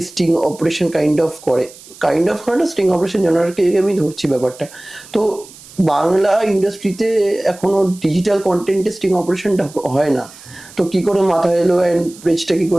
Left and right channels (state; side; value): noise; right; hiss, 20 dB below the sound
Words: sting operation kind of করে, কাইন্ড অফ না, স্টিং অপারেশন জানারকে আমি ধরছি ব্যাপারটা। তো বাংলা ইন্ডাস্ট্রিতে এখনো ডিজিটাল কন্টেন্টে স্টিং অপারেশনটা হয় না, তো কি করে মাথা এলো অ্যান্ড পেজটা কি